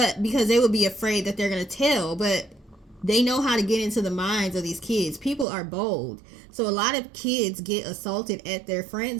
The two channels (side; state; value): left; drops out; at 5.5 s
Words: because they would be afraid that they're going to tell. But they know how to get into the minds of these kids. People are bold. So a lot of kids get assaulted at their